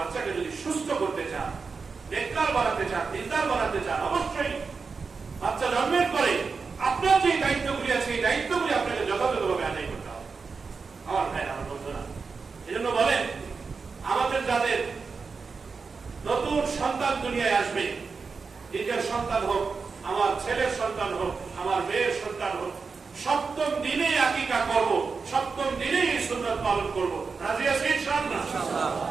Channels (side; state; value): left; quieter; 4.9 dB